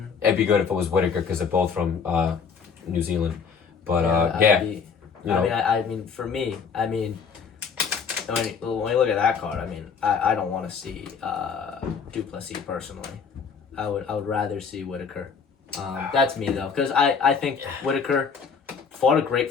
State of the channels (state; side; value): quieter; right; 6.0 dB